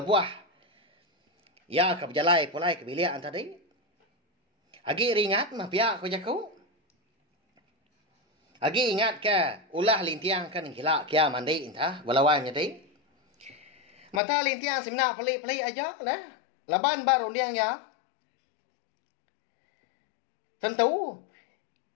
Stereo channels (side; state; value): right; drops out; at 14.2 s